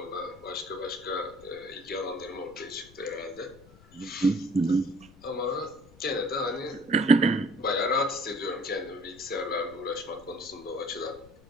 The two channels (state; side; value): noise; left; rumble, 23 dB below the sound